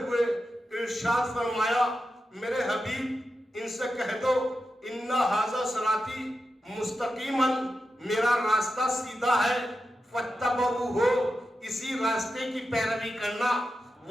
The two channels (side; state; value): both; normal; correlation 0.90